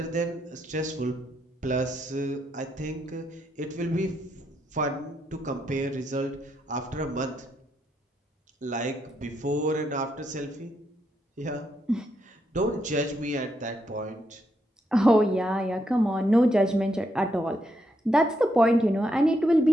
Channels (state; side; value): normal; both; correlation 0.79